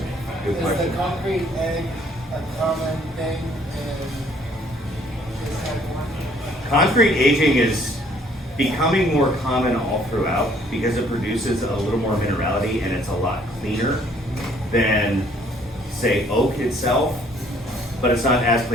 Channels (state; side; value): normal; both; correlation 0.61